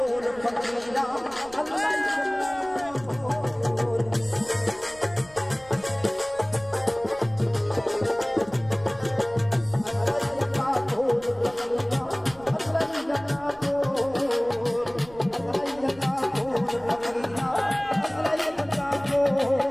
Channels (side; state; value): right; noise; rumble, 22 dB below the sound